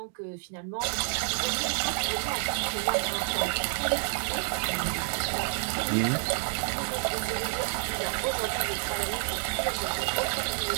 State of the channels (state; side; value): silent; left; digital silence